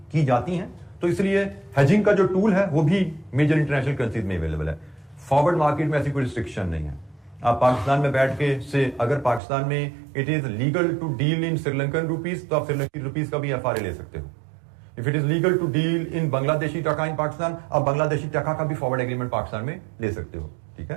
की जाती हैं। तो इसलिए हेजिंग का जो टूल है वो भी मेजर इंटरनेशनल करेंसीज में अवेलेबल है। फॉरवर्ड मार्केट में ऐसी कोई रिस्ट्रिक्शन नहीं है। आप पाकिस्तान में बैठ के से अगर पाकिस्तान में it is legal to deal in Sri Lankan rupees तो आप श्रीलंकन रुपीज का भी एफआरए ले सकते हो। If it is legal to deal in Bangladeshi taka in Pakistan, आप बांग्लादेशी टका का भी फॉरवर्ड एग्रीमेंट पाकिस्तान में ले सकते हो, ठीक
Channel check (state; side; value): drops out; left; at 9.4 s